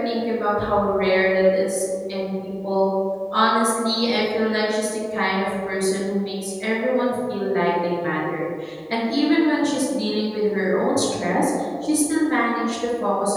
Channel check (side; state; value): both; identical; correlation 1.00